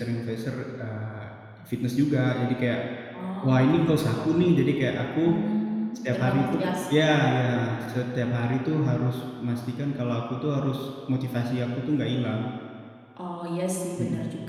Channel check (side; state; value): both; identical; correlation 1.00